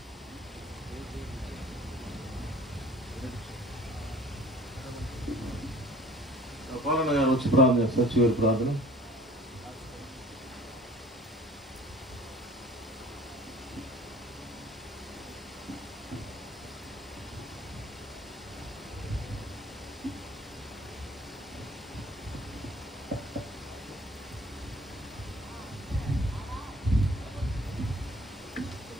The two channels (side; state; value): both; normal; correlation 0.50